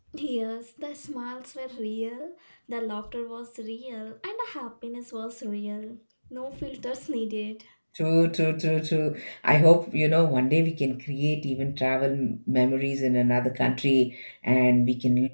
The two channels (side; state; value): both; inverted; correlation -1.00